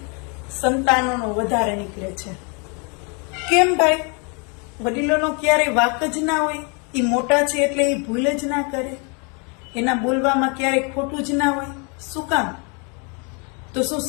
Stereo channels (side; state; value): right; quieter; 34.5 dB